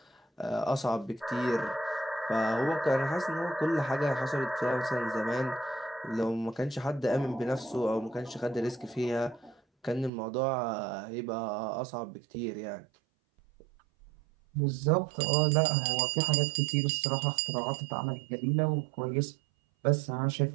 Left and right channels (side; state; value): left; drops out; at 10.1 s